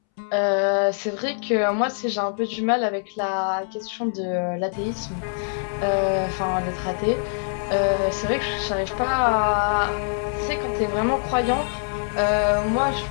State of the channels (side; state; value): right; silent; 63 dB below the other